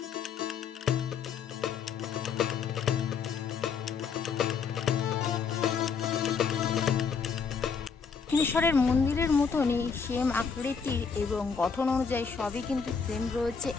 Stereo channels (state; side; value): quieter; right; 5.9 dB